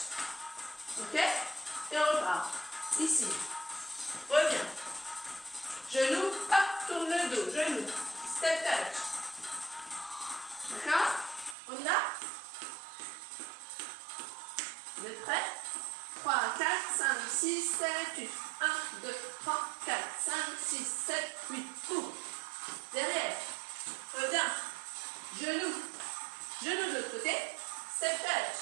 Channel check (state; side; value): drops out; left; at 11.6 s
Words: Ok? Et on repart. Ici. Reviens. Genou, hop, tourne le dos. Genou. Step touch. D'accord? On y va? Vous êtes prêts? 3, 4, 5, 6, 7, 8. 1, 2, 3, 4, 5, 6, 7, 8. Ouvre. Derrière. Reviens. Genou. Genou de l'autre côté. Step touch.